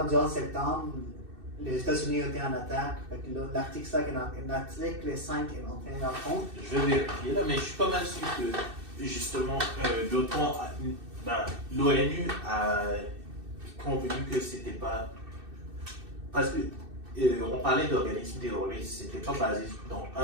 du 11 septembre, les États-Unis ont été en attaque. L'article 5 est entré en compte. Je vais vérifier là, mais je suis pas mal sûr que justement l'OTAN, l'ONU a convenu que c'était pas. Parce que on parlait d'organismes terroristes, c'était pas basé dans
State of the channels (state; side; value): late; left; 2.6 ms